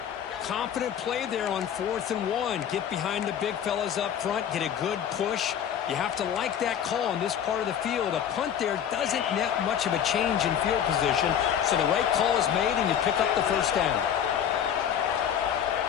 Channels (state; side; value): quieter; right; 9.0 dB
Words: Confident play there on 4th and 1. Get behind the big fellas up front. Get a good push. You have to like that call in this part of the field. A punt there doesn't net much of a change in field position. So the right call is made, and you pick up the first down.